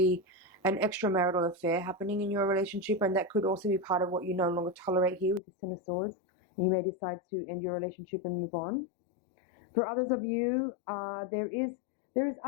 an extramarital affair happening in your relationship, and that could also be part of what you no longer tolerate here with this 10 of Swords, and you may decide to end your relationship and move on. For others of you, there is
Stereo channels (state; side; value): drops out; right; at 5.4 s